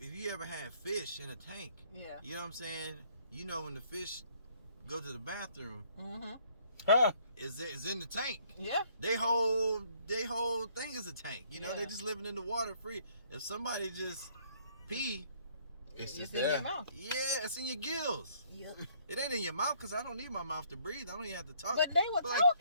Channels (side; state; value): both; inverted; correlation -0.63